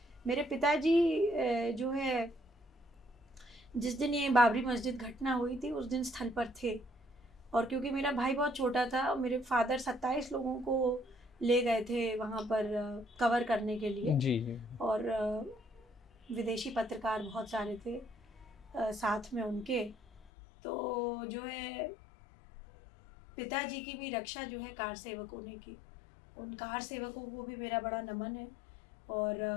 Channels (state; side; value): drops out; right; at 20.3 s